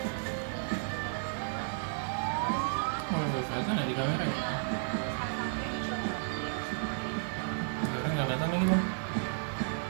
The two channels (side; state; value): left; silent; digital silence